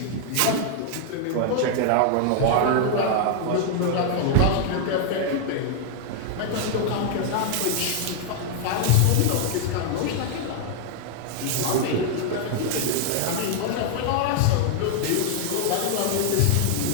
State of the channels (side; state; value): both; different; correlation 0.00